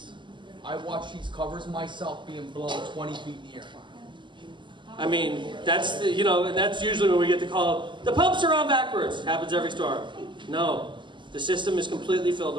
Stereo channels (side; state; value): left; late; 0.23 ms